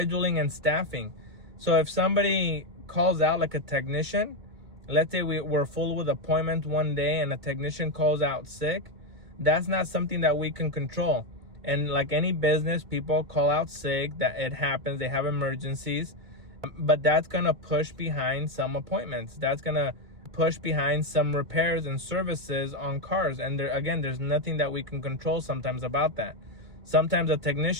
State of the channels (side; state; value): left; late; 2.5 ms